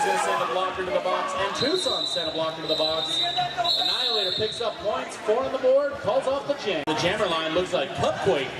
to send a blocker to the box, and Tucson sent a blocker to the box. Annihilator picks up points, 4 on the board, calls off the jam. The jammer line looks like Cupquake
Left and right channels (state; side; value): identical; both; correlation 1.00